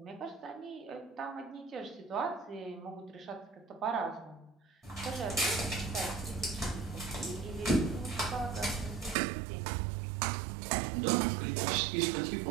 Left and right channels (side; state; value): left; drops out; at 9.2 s